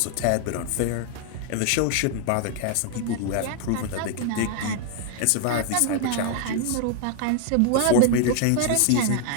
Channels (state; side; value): different; both; correlation 0.00